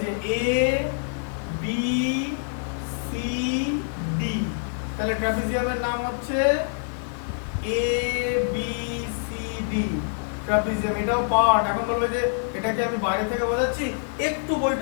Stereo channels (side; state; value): right; silent; 56 dB below the other